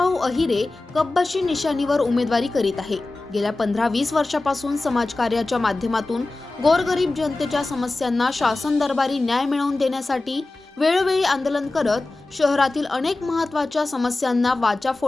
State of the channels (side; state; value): right; quieter; 3.1 dB